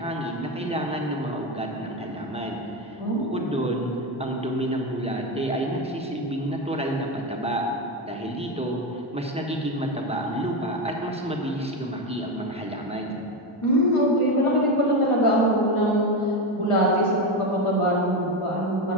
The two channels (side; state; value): both; normal; correlation 0.14